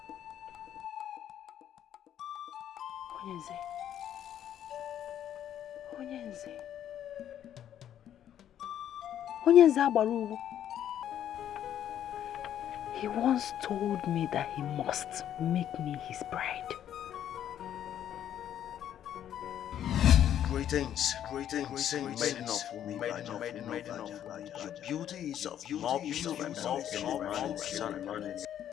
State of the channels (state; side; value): quieter; right; 10.5 dB